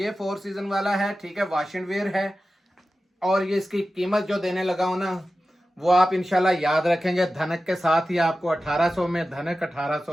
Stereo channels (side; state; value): both; normal; correlation 0.94